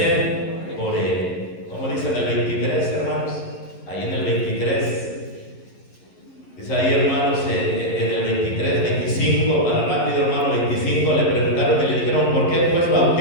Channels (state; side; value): late; right; 11 ms